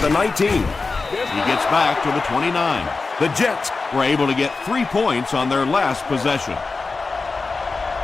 19. He gets back to the 29. The Jets were able to get 3 points on their last possession.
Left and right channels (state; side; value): quieter; right; 4.0 dB